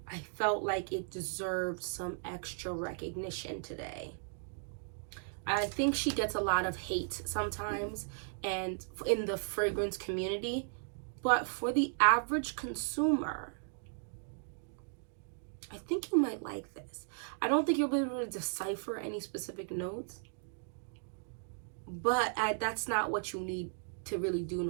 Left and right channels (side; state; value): left; silent; digital silence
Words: I felt like it deserved some extra recognition today. I think she gets a lot of hate sometimes and in the fragrance community, but for the average consumer, I think you might like this. I don't think you'll be able to decipher any specific notes, but that's not what you need to really do in